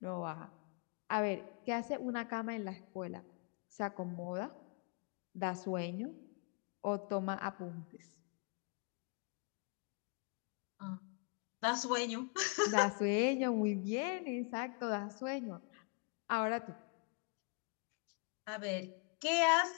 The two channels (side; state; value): right; quieter; 37.3 dB